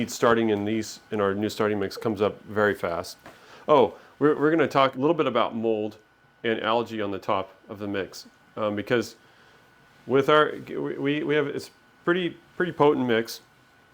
starting in our new starting mix comes up very fast. Oh, we're going to talk a little bit about mold and algae on the top of the mix, because with we have it's pretty potent mix,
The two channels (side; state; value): both; identical; correlation 1.00